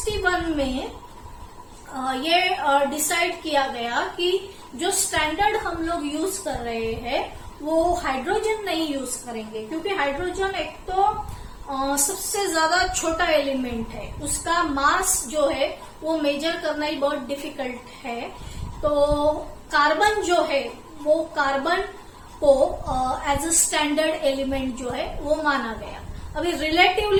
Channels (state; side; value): identical; both; correlation 1.00